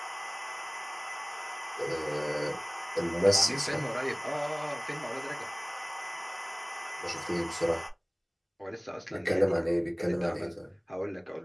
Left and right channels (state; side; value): identical; both; correlation 1.00